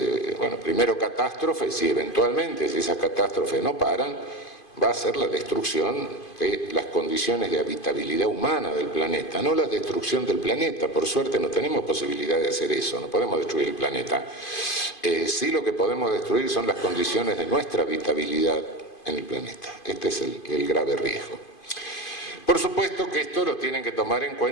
primero catástrofes y eventualmente, si esas catástrofes no paran, va a ser la destrucción de las condiciones de habitabilidad humana del planeta, no la destrucción del planeta. Por suerte no tenemos posibilidad de hacer eso, no podemos destruir el planeta. Sí, lo que podemos destruir son las condiciones de nuestra habitabilidad en el planeta. Este es el grave riesgo. Por supuesto que esto lo tienen que tomar en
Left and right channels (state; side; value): late; right; 2.5 ms